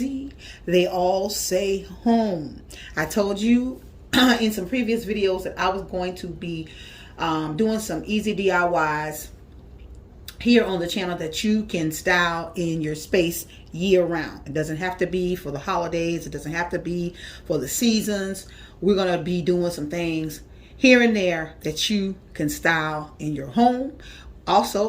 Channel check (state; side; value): identical; both; correlation 1.00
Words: they all say home. I told you in some previous videos that I was going to be doing some easy DIYs here on the channel that you can style in your space year round. It doesn't have to be for the holidays, it doesn't have to be for the seasons. We're going to be doing some things here and there that you can style in your home.